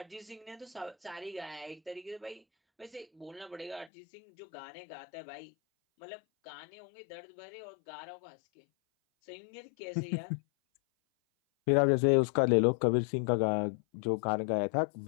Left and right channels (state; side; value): drops out; right; at 3.9 s